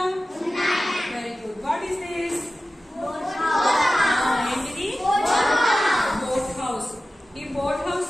Very good. What is this? ఏంటిది? Boat house. ఈ బోట్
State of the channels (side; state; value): both; normal; correlation 0.95